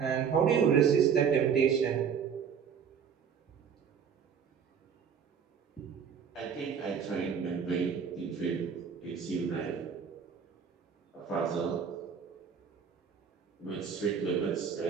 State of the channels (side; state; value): left; quieter; 7.0 dB